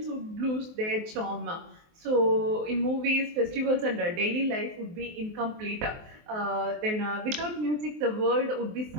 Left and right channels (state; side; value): late; left; 23 ms